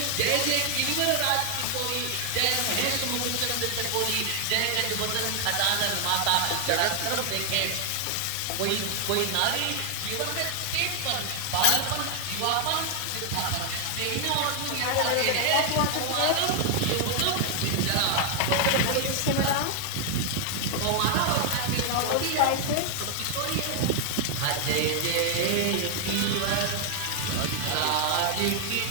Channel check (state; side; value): different; both; correlation 0.00